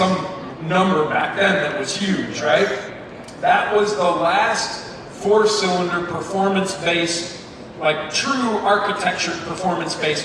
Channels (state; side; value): identical; both; correlation 1.00